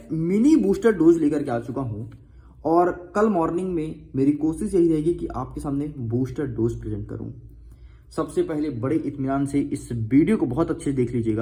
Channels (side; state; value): both; identical; correlation 1.00